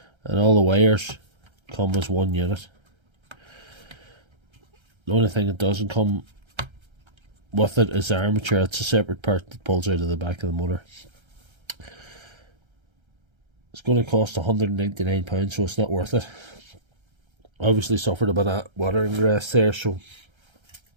and all the wires come as one unit. The only thing that doesn't come with it is the armature. It's a separate part that pulls out of the back of the motor. It's going to cost £199, so it's not worth it. Obviously suffered a bit of water ingress there, so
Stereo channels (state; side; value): late; left; 1.3 ms